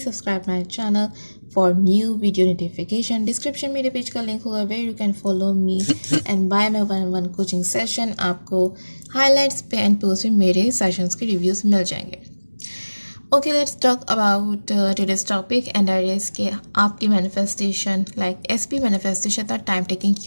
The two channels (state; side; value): inverted; both; correlation -1.00